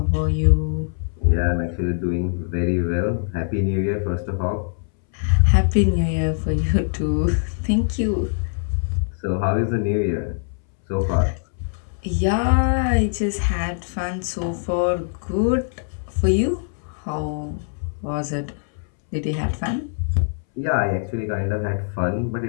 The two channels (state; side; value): silent; right; 64 dB below the other